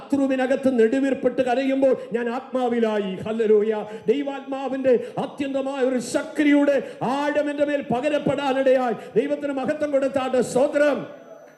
നെടുവീർപ്പെട്ട് കരയുമ്പോൾ ഞാൻ ആത്മാവിലായി. ഹല്ലേലൂയ. ദൈവാത്മാവിന്റെ അത്യന്തമായ ഒരു ശക്തിയുടെ ആഴം എൻ്റെ മേൽ പകരപ്പെടാനിടയായി. ദൈവത്തിന് മഹത്വം കൊടുത്താട്ട് സ്തോത്രം.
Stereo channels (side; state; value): both; identical; correlation 1.00